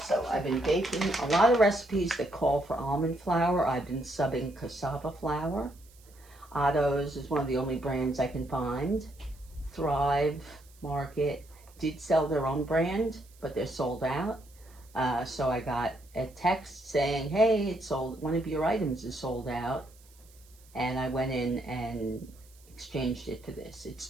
I've been baking a lot of recipes that call for almond flour. I've been subbing cassava flour. Otto's is one of the only brands I can find. Thrive Market did sell their own brand, but they're sold out. So I got a text saying, hey, it's sold, one of your items is sold out. And I went in and exchanged it for this. It's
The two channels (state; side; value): noise; right; hiss, 27 dB below the sound